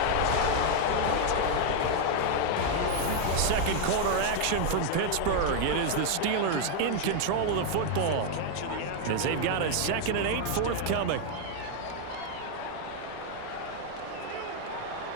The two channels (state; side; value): different; both; correlation 0.00